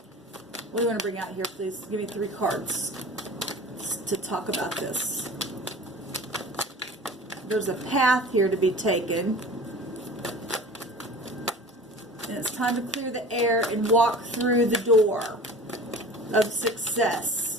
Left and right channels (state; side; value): normal; both; correlation 0.39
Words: What do you want to bring out here, please? Give me 3 cards to talk about this. There's a path here to be taken. And it's time to clear the air and walk through the door of